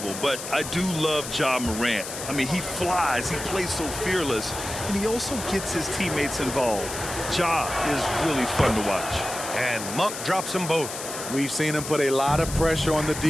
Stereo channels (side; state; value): left; noise; hiss, 8 dB below the sound